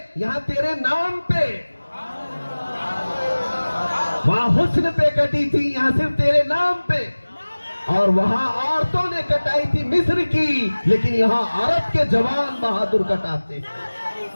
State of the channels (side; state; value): both; inverted; correlation -1.00